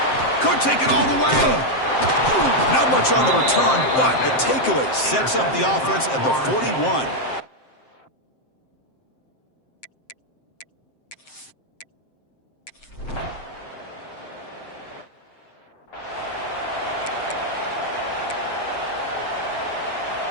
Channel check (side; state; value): right; late; 7.6 ms